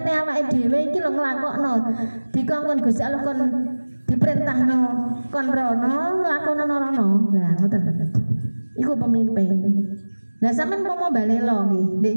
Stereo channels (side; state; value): both; inverted; correlation -1.00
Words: awake dhewe iki lho nglakokno. Dikongkon Gusti Allah kon diperintahno kon rono, lakonono rono. Lah ngoten. Iku pemimpin. Lah sampean mau balelo nggih ndek